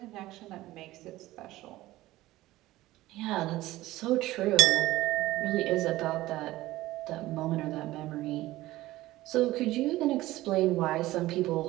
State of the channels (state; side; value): quieter; left; 17.0 dB